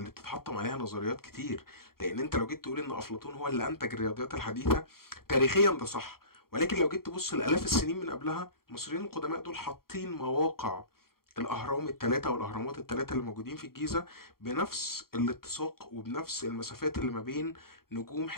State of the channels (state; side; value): late; right; 0.93 ms